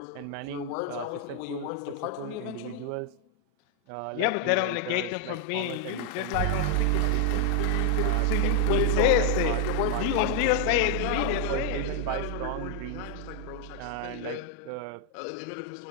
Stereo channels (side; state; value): both; different; correlation 0.00